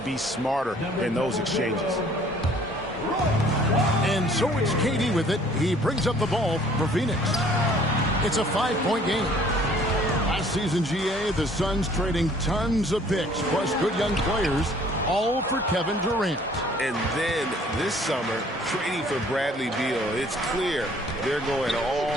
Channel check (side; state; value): both; normal; correlation 0.56